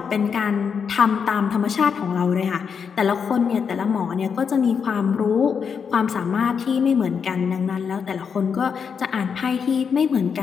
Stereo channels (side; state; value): right; quieter; 6.5 dB